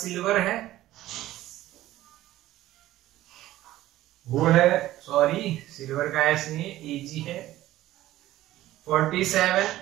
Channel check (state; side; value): quieter; left; 15.1 dB